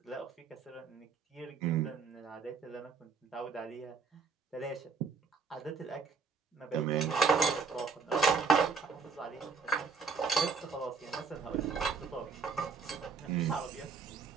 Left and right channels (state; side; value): quieter; left; 5.2 dB